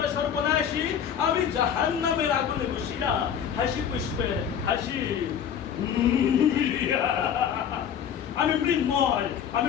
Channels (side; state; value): right; quieter; 8.5 dB